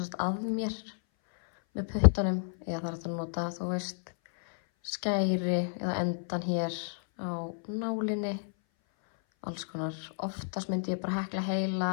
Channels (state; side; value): silent; right; 56 dB below the other